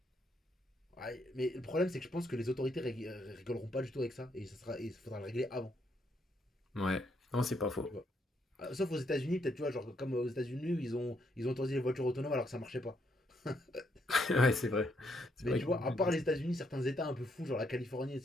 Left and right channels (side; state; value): both; normal; correlation 0.75